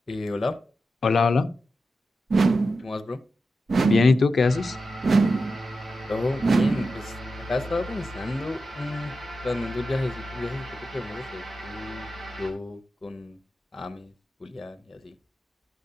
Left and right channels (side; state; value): both; normal; correlation 0.90